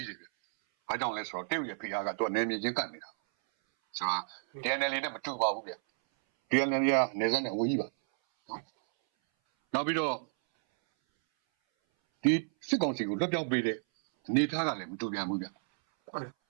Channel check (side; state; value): left; silent; 57 dB below the other